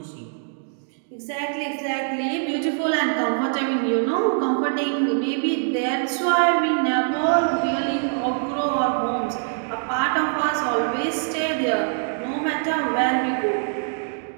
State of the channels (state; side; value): silent; left; 63 dB below the other